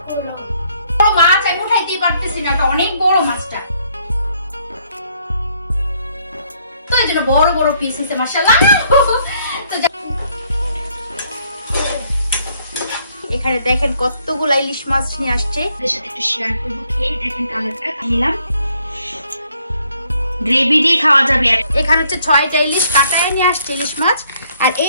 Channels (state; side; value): inverted; both; correlation -0.68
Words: করো। বড় মাছ আমি উঠাইতেই পারতেছি না, অনেক বড় মাছটা, তো এই জন্য বড় বড় পিস হয়েছে মাশাআল্লাহ। তো এখানে দেখেন কতগুলো ইলিশ মাছ নিয়ে আসছে, এর সাথে একটু শেয়ার করব। খেয়ে দেখেন কালারটা নিলাম, গ্রেভি দিয়ে খাওয়া যাবে। এখানে হচ্ছে 6টা ইলিশ কাটায় নিয়ে আসছে ইলিশ মাছ। আর